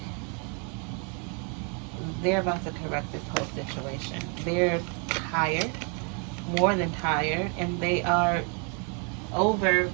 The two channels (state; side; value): quieter; left; 35.7 dB